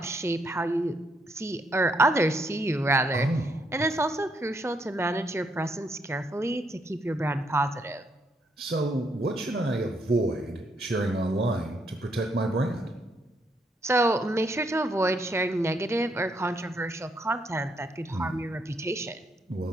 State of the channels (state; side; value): normal; both; correlation 0.75